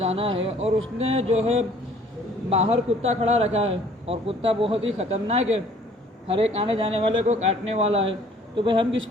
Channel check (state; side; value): normal; both; correlation 0.56